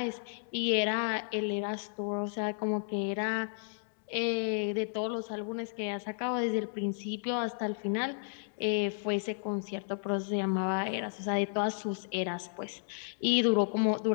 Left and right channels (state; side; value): silent; right; digital silence